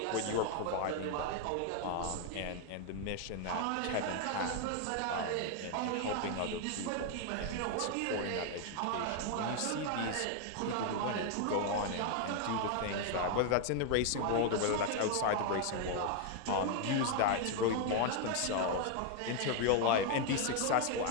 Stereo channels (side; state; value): both; different; correlation 0.00